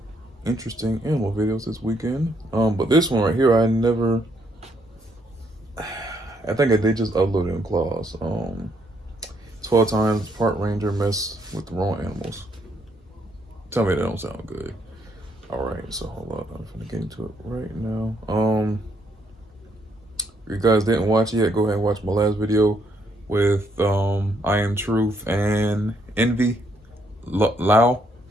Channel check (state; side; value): normal; both; correlation 0.72